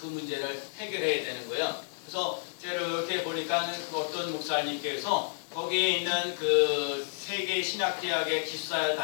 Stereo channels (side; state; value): right; silent; digital silence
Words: 문제를 해결해야 되는 거예요. 그래서 제가 이렇게 보니까 어떤 목사님께서 거기에 있는 그 세계 신학대학의 기숙사에